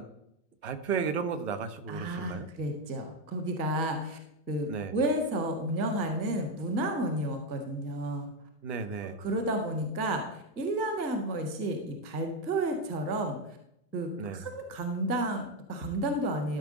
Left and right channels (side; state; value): right; late; 1.5 ms